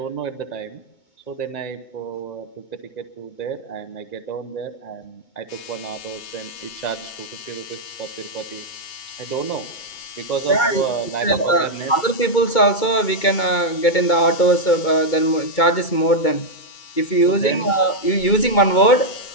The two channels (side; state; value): right; late; 2.2 ms